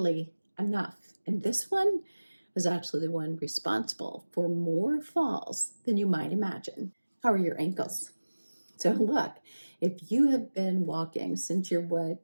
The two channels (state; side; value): inverted; both; correlation -1.00